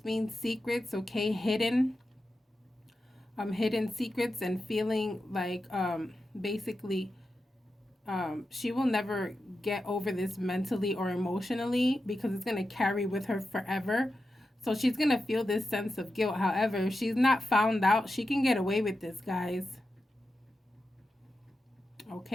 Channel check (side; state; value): both; normal; correlation 0.90